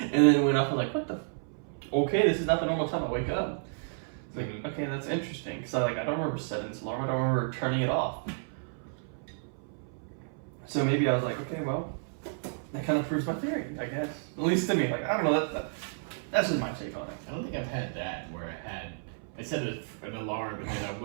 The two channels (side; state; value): left; silent; 57 dB below the other